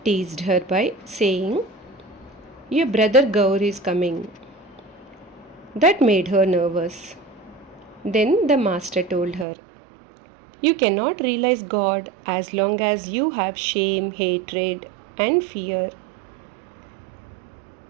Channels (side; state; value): left; drops out; at 9.5 s